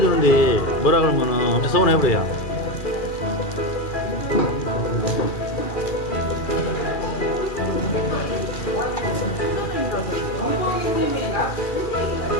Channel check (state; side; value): late; right; 2.4 ms